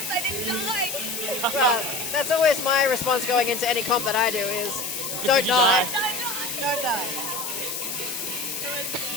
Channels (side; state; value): left; noise; hiss, 4 dB below the sound